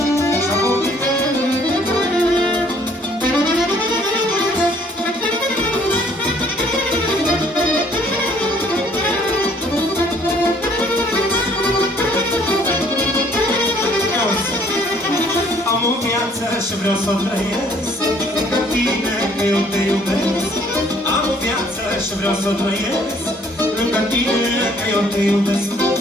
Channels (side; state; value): both; normal; correlation 0.61